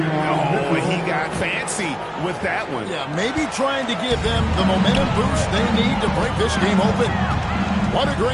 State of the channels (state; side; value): identical; both; correlation 1.00